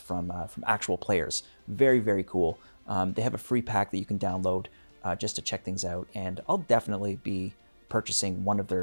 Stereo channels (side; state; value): both; inverted; correlation -1.00